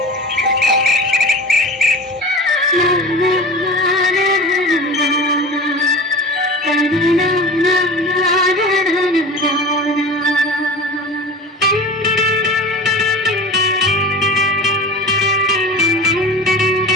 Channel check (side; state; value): both; normal; correlation 0.34